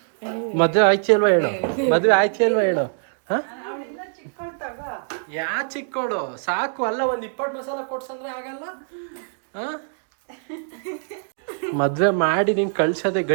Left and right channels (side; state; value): left; silent; digital silence